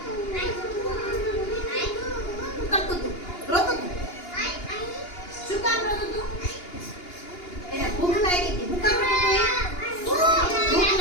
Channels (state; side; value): late; right; 2.8 ms